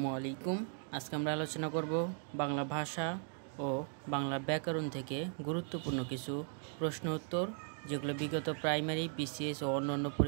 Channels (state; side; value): silent; left; 53 dB below the other